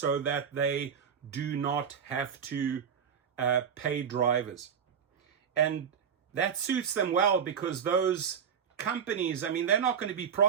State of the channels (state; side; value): quieter; left; 7.4 dB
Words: that they do not have to pay drivers. And that suits them well, because those companies, I mean, they're not going to be